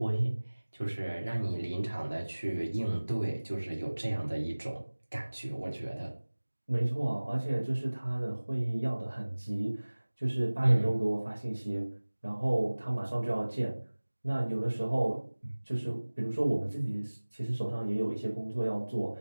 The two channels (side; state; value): both; inverted; correlation -1.00